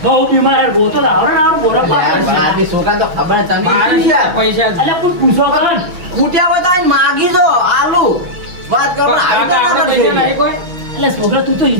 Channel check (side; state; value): left; late; 6.2 ms